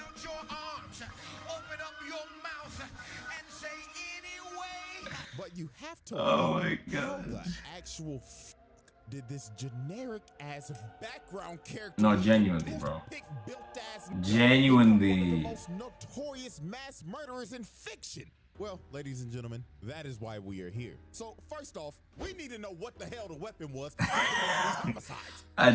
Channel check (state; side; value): identical; both; correlation 1.00